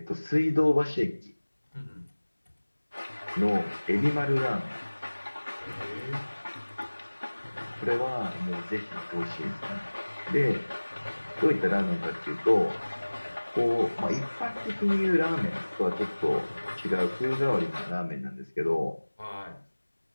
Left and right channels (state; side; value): inverted; both; correlation -1.00